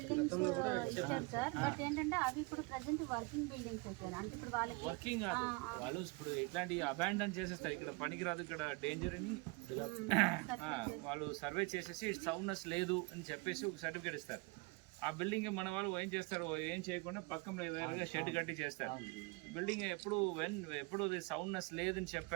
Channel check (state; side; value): quieter; left; 27.3 dB